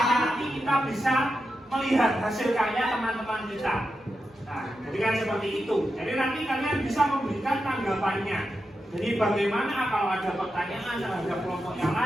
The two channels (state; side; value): normal; both; correlation 0.88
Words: nanti kita bisa melihat hasil karya teman-teman kita. Nah, jadi kan seperti itu. Jadi nanti kalian bisa memberikan tanggapannya. Jadi bagaimana kalau ada pertanyaan terhadap kelompok yang